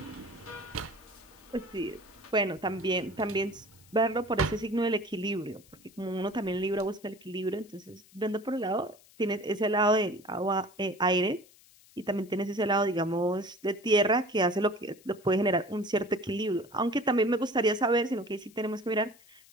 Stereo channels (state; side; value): noise; left; hiss, 26 dB below the sound